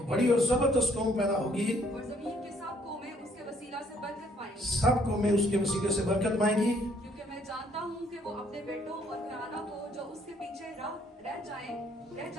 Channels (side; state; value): both; normal; correlation 0.65